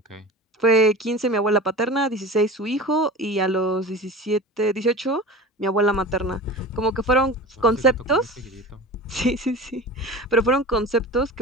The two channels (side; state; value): both; normal; correlation 0.34